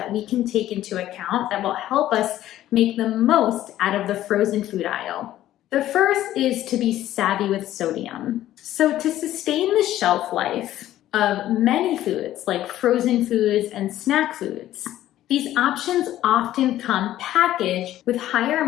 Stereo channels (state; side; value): quieter; right; 13.4 dB